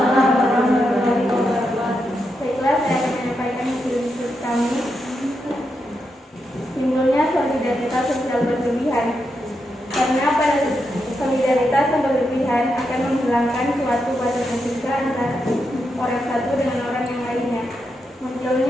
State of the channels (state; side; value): normal; both; correlation 0.84